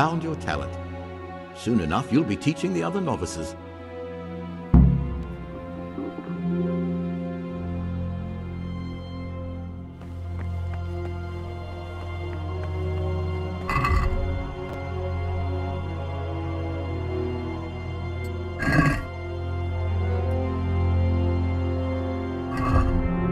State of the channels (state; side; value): identical; both; correlation 1.00